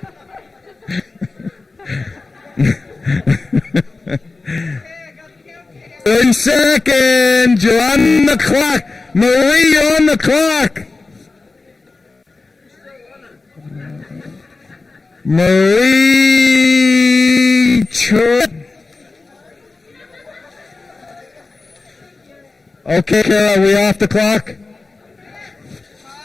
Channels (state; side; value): quieter; right; 3.7 dB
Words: In seconds, you're on the clock. Marie, you're on the clock. Marie Tripp. Okay, Carol, are we off the clock?